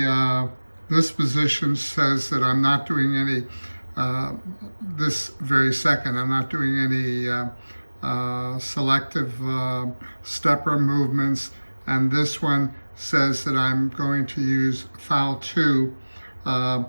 position says that I'm not doing any, this very second, I'm not doing any selective stepper movements, and this one says that I'm going to use file 2 when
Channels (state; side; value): inverted; both; correlation -1.00